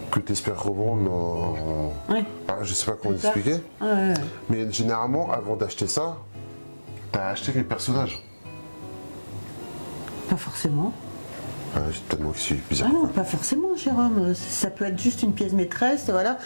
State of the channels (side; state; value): both; inverted; correlation -1.00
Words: que tu espères revendre Ouais. je sais pas comment l'expliquer, Ouais. mais généralement, avant d'acheter ça, t'as acheté les personnages. Pas forcément. Tellement que c'est bizarre. Ah non, pas forcément, Jérôme. Ça peut être juste une pièce maîtresse, voilà.